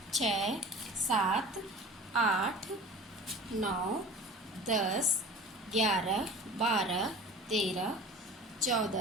6 7 8 9 10 11 12 13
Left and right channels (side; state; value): both; normal; correlation 0.39